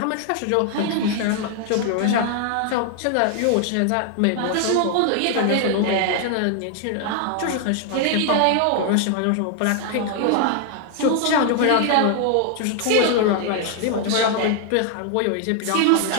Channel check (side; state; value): both; different; correlation 0.00